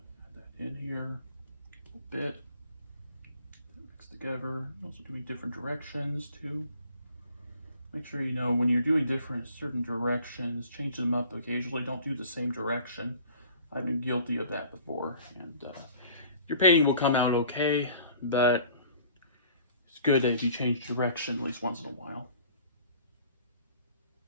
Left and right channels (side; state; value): both; inverted; correlation -0.50